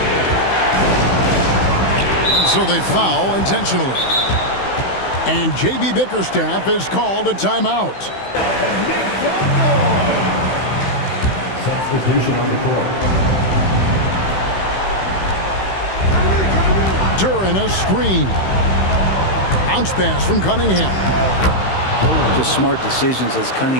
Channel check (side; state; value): right; late; 16 ms